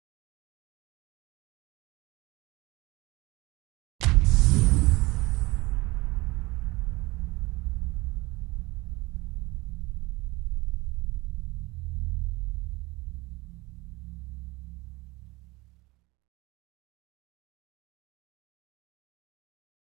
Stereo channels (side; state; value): left; quieter; 22.1 dB